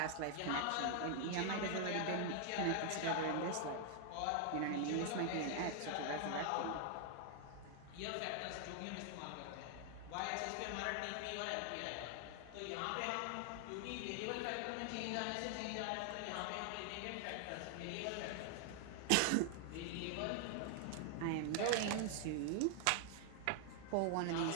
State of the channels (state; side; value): different; both; correlation 0.00